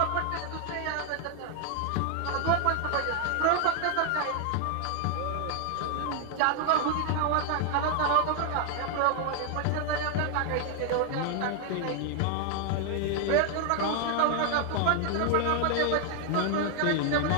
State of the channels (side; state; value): both; different; correlation 0.00